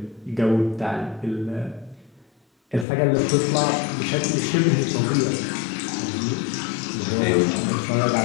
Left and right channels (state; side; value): drops out; right; at 2.9 s